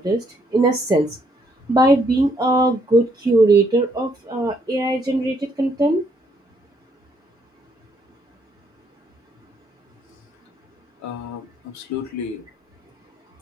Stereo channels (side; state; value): both; normal; correlation 0.70